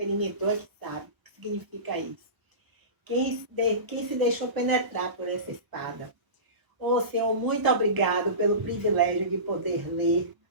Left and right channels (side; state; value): left; late; 1.1 ms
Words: é que sabe o que significa isso. Quem se deixou penetrar por essa espada. Oh, Senhor, muito obrigado pelo privilégio de poder ler